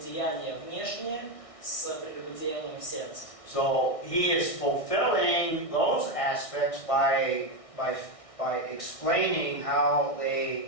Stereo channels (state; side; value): late; right; 1.6 ms